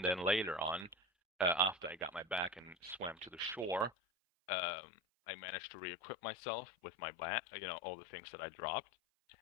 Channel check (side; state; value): right; drops out; at 3.9 s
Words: then later on, after I got my back and swam to the shore, um, I managed to re-equip myself with my bat, all the things that I dropped,